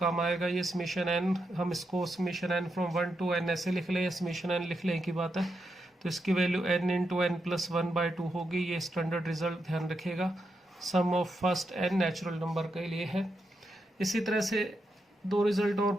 आएगा ये समीशन n। हम इसको summation n from 1 to n ऐसे लिख लें, समीशन n लिख लें की बात है। तो इसकी value n into n plus 1 by 2 होगी, ये स्टैंडर्ड रिजल्ट ध्यान रखिएगा, sum of first n natural number के लिए है। इसी तरह से 2 रिजल्ट और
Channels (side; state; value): both; normal; correlation 0.84